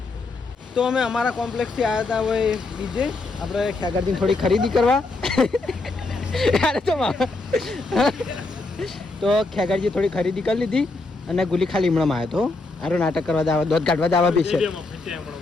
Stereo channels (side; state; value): right; quieter; 3.4 dB